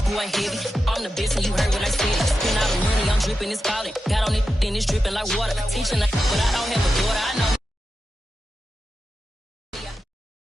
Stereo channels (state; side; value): normal; both; correlation 0.91